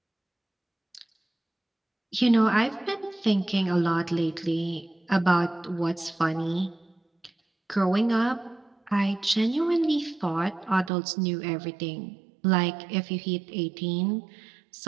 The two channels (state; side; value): drops out; left; at 10.9 s